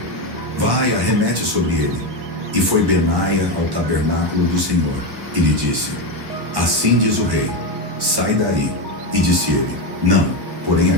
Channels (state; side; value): late; left; 1.1 ms